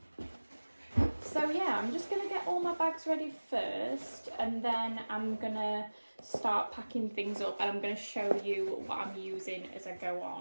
So yeah, I'm just gonna get all my bags ready first, and then I'm gonna start packing things up, and I'm gonna show you what I'm using as I go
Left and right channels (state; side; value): inverted; both; correlation -1.00